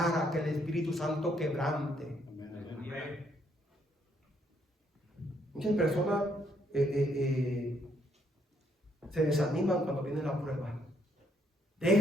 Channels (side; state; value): both; normal; correlation 0.71